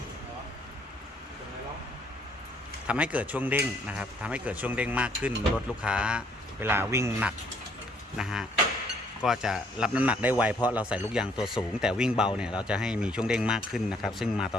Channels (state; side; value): normal; both; correlation 0.65